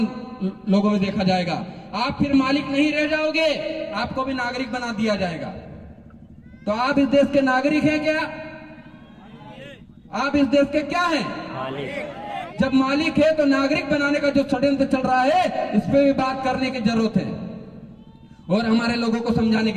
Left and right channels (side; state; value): both; identical; correlation 1.00